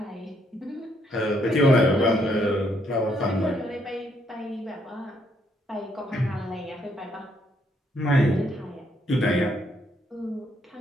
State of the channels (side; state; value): both; normal; correlation 0.72